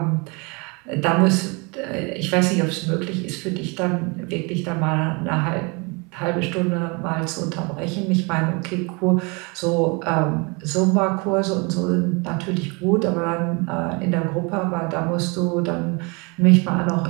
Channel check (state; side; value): quieter; left; 30.0 dB